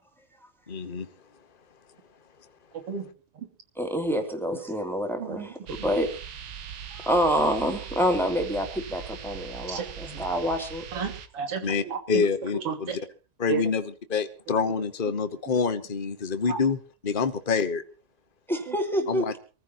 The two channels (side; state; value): left; late; 1.9 ms